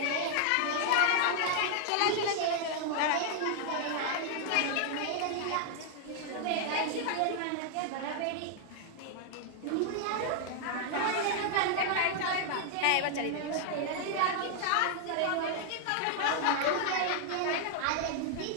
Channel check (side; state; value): both; different; correlation 0.00